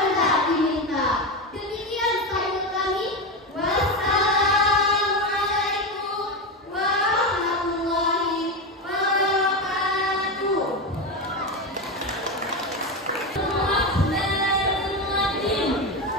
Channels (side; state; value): both; normal; correlation 0.16